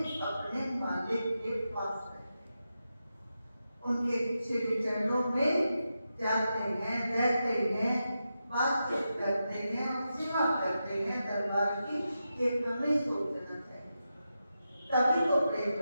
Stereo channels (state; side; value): inverted; both; correlation -0.89